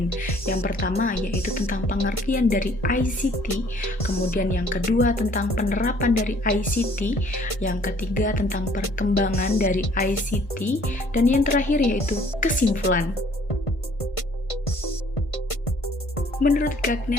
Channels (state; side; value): late; right; 1.5 ms